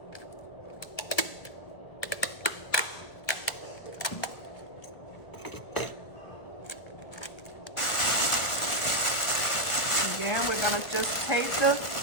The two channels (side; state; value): right; late; 1.5 ms